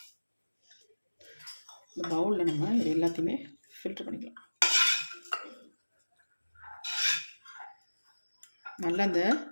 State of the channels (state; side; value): inverted; both; correlation -1.00